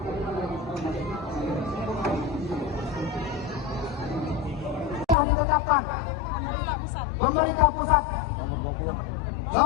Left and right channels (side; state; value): right; drops out; at 5.2 s